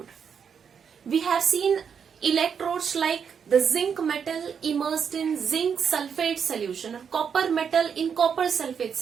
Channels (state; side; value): quieter; left; 7.0 dB